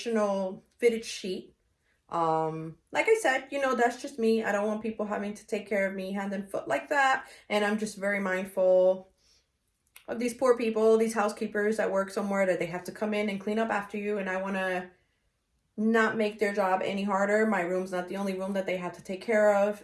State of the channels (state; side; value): identical; both; correlation 1.00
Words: fitted sheet. Like I said, you know, that's just me. I don't want people having to take care of me hand and foot like that. And I'm just very mindful of these poor people, these housekeepers that work somewhere that they have to come in and clean up after you. And I want to not make their job any harder. My room's not the only room that they have to take care of.